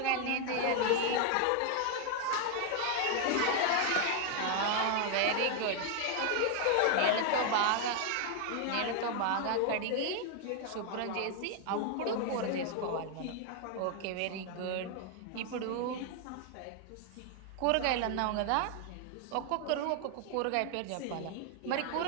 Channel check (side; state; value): both; different; correlation 0.00